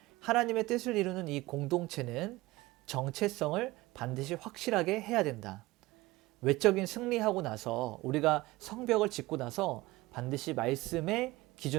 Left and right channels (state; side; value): quieter; left; 19.8 dB